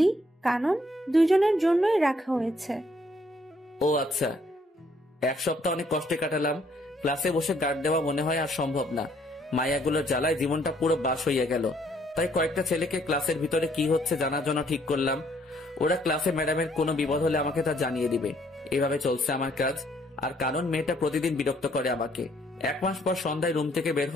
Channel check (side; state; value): both; normal; correlation 0.66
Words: কানন, দুজনের জন্যই রাখা হয়েছে। ও আচ্ছা। এক সপ্তাহ অনেক কষ্টে কাটালাম। ক্লাসে বসে গার্ড দেওয়া মনে হয় আর সম্ভব না। মায়াগুলোর জ্বালায় জীবনটা পুরো বাস হইয়া গেল। তাই কয়েকটা ছেলেকে ক্লাসের ভিতরে কি হচ্ছে জানার জন্য ঠিক করলাম। ওরা ক্লাসে ম্যাডামের কোনো বিপদ হলে আমাকে তা জানিয়ে দিবে। এভাবে চলছে আমার কাজ। আর কানন মেয়েটা প্রতিদিন বিরক্ত করে আমাকে। 1 মাস পর সন্ধ্যায় রুম থেকে বের